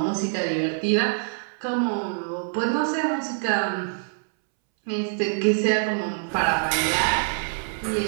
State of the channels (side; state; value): left; silent; 62 dB below the other